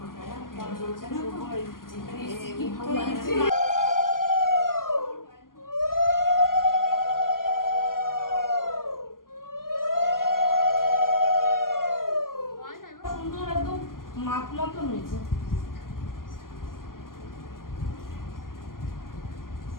সুন্দর একদম মাপ মতন হয়েছে।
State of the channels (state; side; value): late; right; 0.91 ms